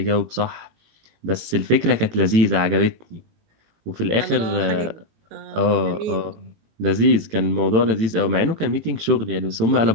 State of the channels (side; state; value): left; late; 18 ms